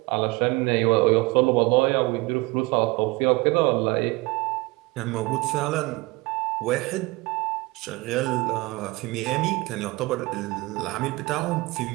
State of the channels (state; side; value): quieter; left; 23.2 dB